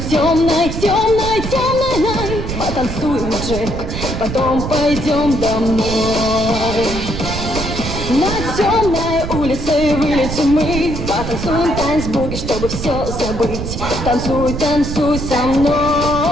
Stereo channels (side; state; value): right; noise; rumble, 5 dB below the sound